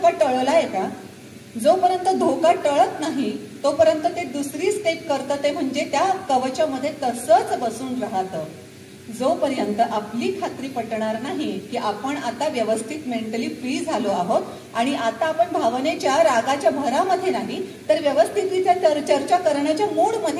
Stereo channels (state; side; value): identical; both; correlation 1.00